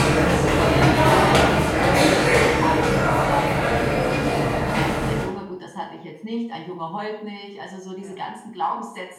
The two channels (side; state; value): both; identical; correlation 1.00